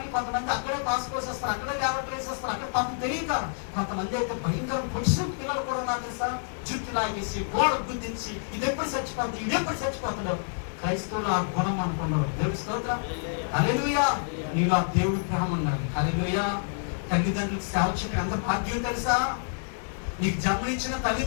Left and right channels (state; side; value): silent; right; digital silence